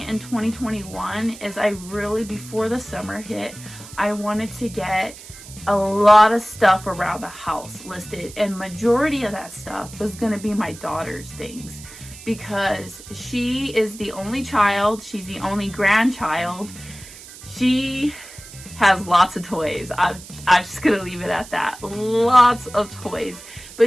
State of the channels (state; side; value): noise; right; hiss, 17 dB below the sound